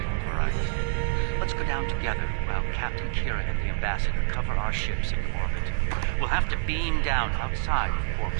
variety. Let's go down together while Captain Kira and the Ambassador cover our ships in orbit. We'll have to beam down outside of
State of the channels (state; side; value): silent; left; digital silence